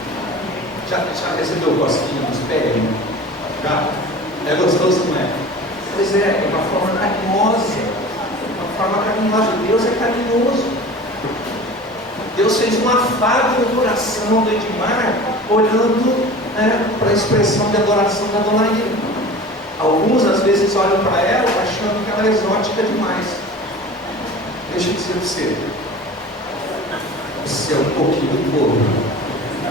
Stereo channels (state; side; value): normal; both; correlation 0.38